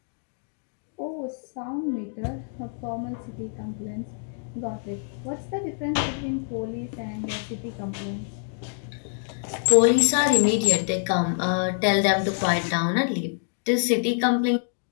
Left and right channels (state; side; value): silent; right; digital silence